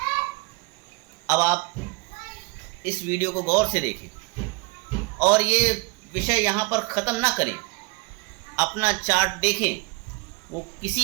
अब आप इस वीडियो को गौर से देखें और ये विषय यहाँ पर ख़त्म ना करें। अपना चार्ट देखें, वो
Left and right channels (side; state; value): left; quieter; 27.3 dB